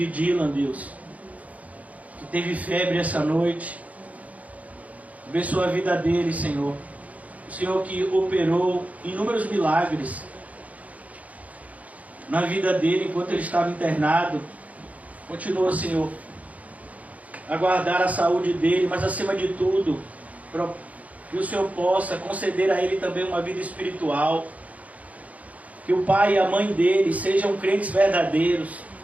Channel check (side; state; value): left; late; 0.070 ms